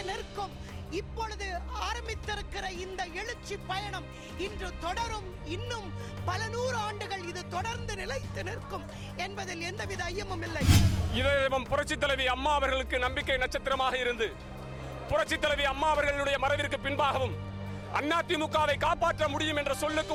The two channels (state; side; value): identical; both; correlation 1.00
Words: நிற்கும். இப்பொழுது ஆரம்பித்திருக்கிற இந்த எழுச்சி பயணம் இன்று தொடரும். இன்னும் பல 100 ஆண்டுகள் இது தொடர்ந்து நிலைத்து நிற்கும் என்பதில் எந்தவித ஐயமும் இல்லை. இதயம் புரட்சி தலைவி அம்மா அவர்களுக்கு நம்பிக்கை நட்சத்திரமாக இருந்து புரட்சி தலைவி அம்மா அவர்களுடைய மறைவிற்கு பின்பாகவும் அதிமுகவை காப்பாற்ற முடியும் என்ற சொல்லுக்கு